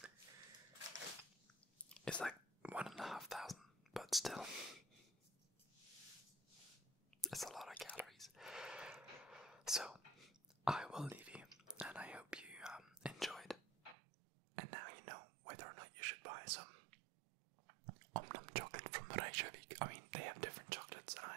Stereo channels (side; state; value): left; drops out; at 14.0 s